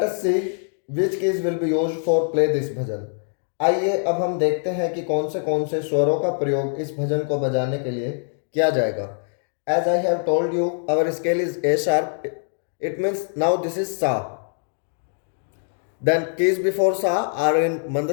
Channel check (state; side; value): silent; right; 58 dB below the other